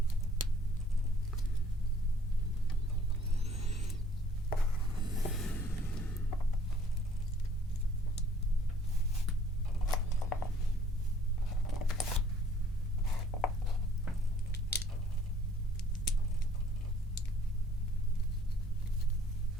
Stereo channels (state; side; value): normal; both; correlation 0.59